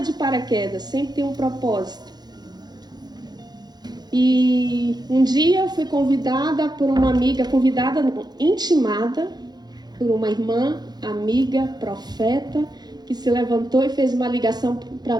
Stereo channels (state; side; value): late; left; 0.20 ms